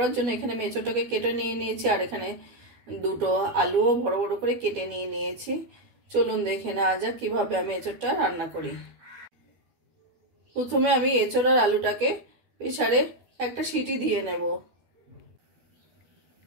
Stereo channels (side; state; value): left; late; 12 ms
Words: জন্য এখানে আমি এঁচড়টাকে কেটে নিয়ে নিয়েছি, আর এখানে দুটো আলুও বড় বড় করে কেটে নিয়ে নিয়েছি। চলুন দেখে নেওয়া যাক কিভাবে আমি এঁচড়টা রান্না করি। প্রথমে আমি এঁচড় আর আলুটাকে প্রেসারে একটা সিটি দিয়ে নেব।